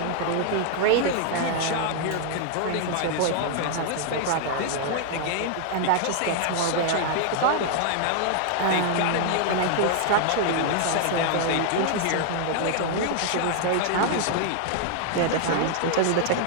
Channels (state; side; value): different; both; correlation 0.00